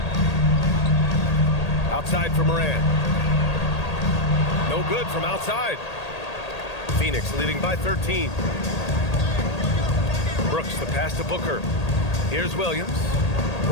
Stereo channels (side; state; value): right; late; 1.8 ms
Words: Outside for Morant. No good from outside. Phoenix leading by 13. Brooks, the pass to Booker. Here's Williams.